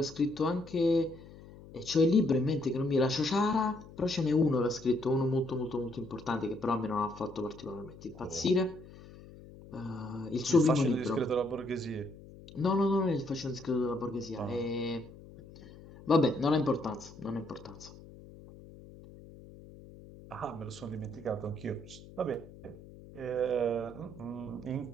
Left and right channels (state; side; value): noise; left; hum, 18 dB below the sound